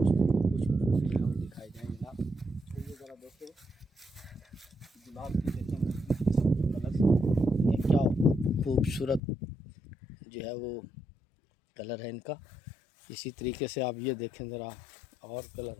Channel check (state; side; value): drops out; right; at 9.2 s